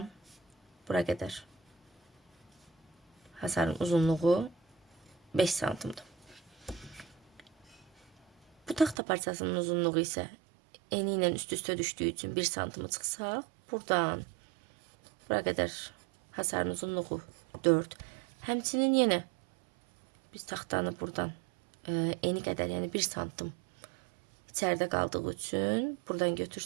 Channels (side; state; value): left; drops out; at 9.0 s